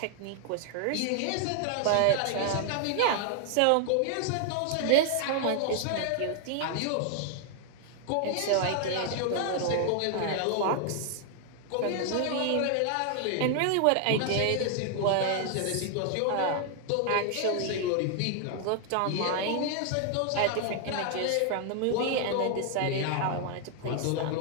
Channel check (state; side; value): different; both; correlation 0.00